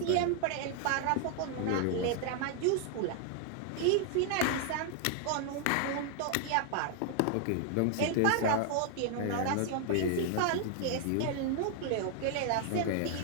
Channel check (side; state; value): both; different; correlation 0.00